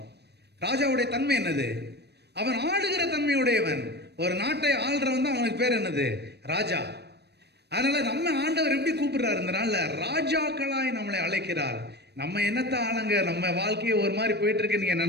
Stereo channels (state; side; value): late; left; 0.48 ms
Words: ராஜாவுடைய தன்மை என்னது, அவன் ஆளுகிற தன்மையுடையவன். ஒரு நாட்டை ஆள்றவன் தான் அவனுக்கு பேர் என்னது, ராஜா. அதனால நம்ம ஆண்டவர் எப்படி கூப்பிடுறாரு, இந்த நாள்ல ராஜாக்களாய் நம்மளை அழைக்கிறார். நம்ம என்னத்த ஆளுங்க, நம்ம வாழ்க்கையை ஒரு மாதிரி போயிட்டு இருக்கு நீங்க